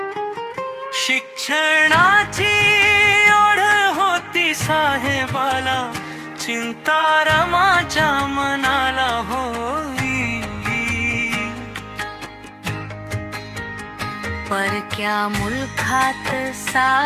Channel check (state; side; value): identical; both; correlation 1.00